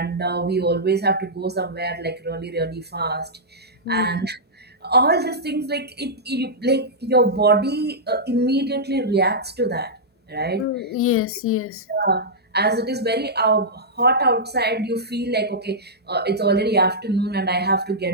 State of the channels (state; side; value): normal; both; correlation -0.11